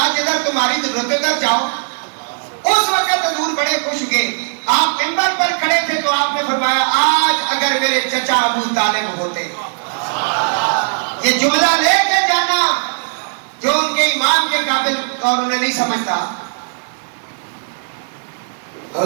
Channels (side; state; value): left; silent; digital silence